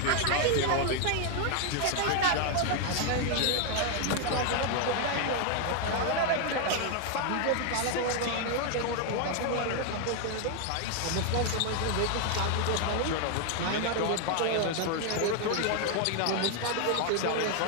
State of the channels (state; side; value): different; both; correlation 0.00